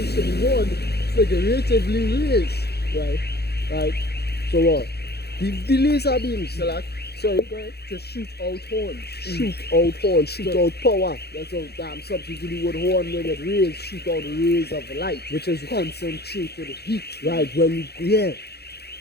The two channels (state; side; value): late; right; 0.47 ms